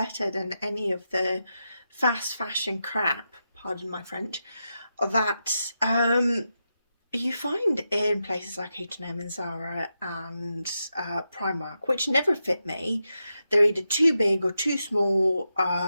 than any of the fast fashion crap, pardon my French, that you find in places like H&M and Zara and Primark, which never fit me. They're either too big or too small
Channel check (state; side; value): inverted; both; correlation -0.87